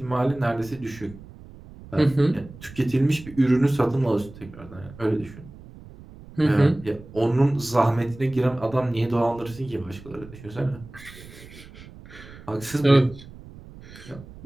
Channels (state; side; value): noise; right; rumble, 18 dB below the sound